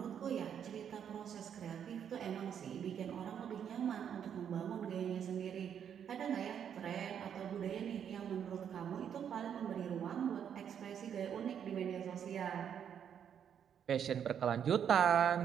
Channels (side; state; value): left; quieter; 8.5 dB